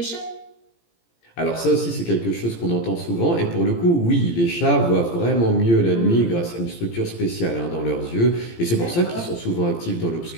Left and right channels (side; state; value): right; late; 17 ms